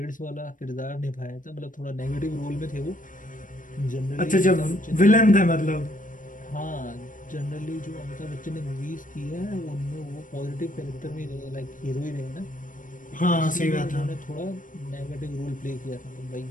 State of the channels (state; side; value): late; right; 0.38 ms